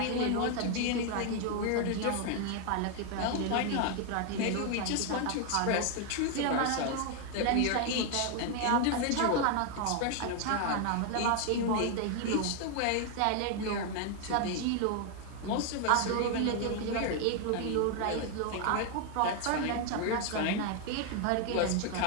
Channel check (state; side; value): different; both; correlation 0.00